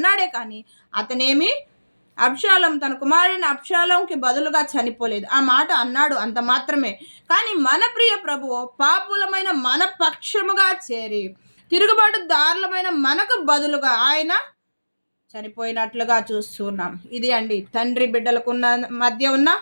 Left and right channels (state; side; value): inverted; both; correlation -1.00